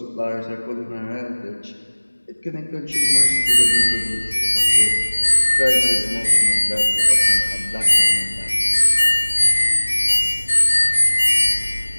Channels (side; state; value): both; inverted; correlation -1.00